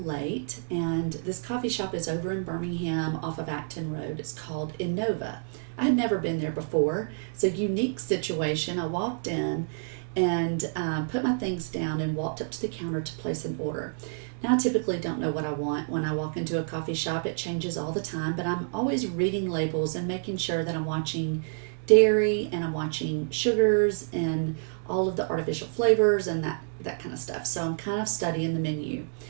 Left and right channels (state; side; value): silent; left; digital silence